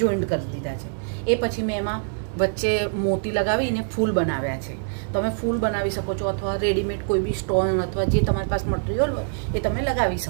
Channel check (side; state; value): left; silent; 62 dB below the other